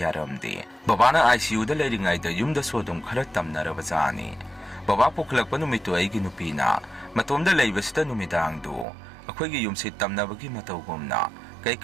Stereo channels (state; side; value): drops out; left; at 8.8 s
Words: ꯕꯕꯥꯅ ICUꯗ ꯂꯩꯔꯤꯉꯩꯗ ꯌꯨꯝꯗꯁꯨ ꯑꯗꯨꯝ ꯈꯔ ꯇꯝꯅꯔꯕꯖꯥꯠꯅꯤ ꯕꯕꯥ ꯄꯨꯈꯠꯂꯛꯄ ꯅꯨꯃꯤꯠꯇꯨ ꯑꯩꯒꯤ ꯅꯨꯄꯤꯅ ꯃꯇꯣꯝꯗ ꯂꯩꯕꯁꯤꯗ ꯅꯨꯃꯤꯗꯥꯡꯗꯨ ꯑꯩꯈꯣꯏꯒꯤ ꯌꯨꯝꯁꯤ ꯇꯝꯅꯕꯒꯤ ꯃꯇꯧꯒꯨꯝꯅ